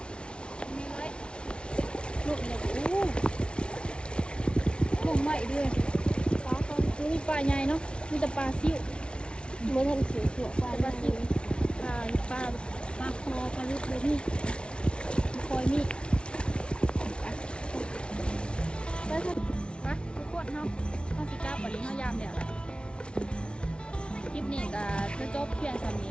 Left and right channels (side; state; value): right; late; 0.057 ms